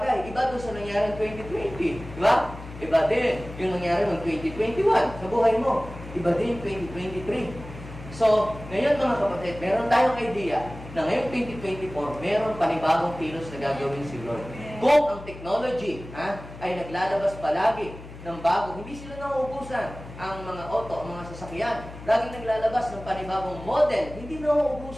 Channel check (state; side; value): noise; left; hum, 14 dB below the sound